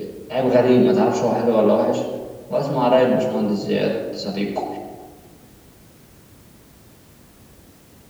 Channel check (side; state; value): both; identical; correlation 1.00